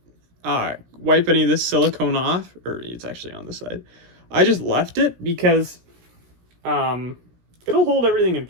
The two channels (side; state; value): left; late; 17 ms